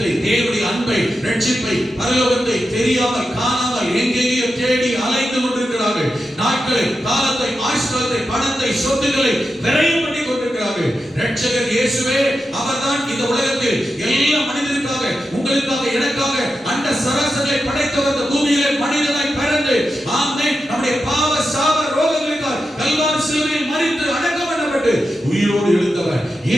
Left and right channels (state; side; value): normal; both; correlation 0.89